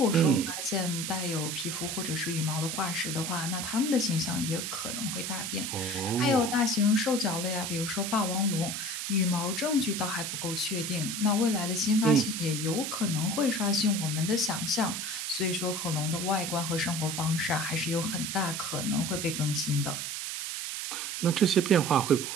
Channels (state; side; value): noise; right; hiss, 4 dB below the sound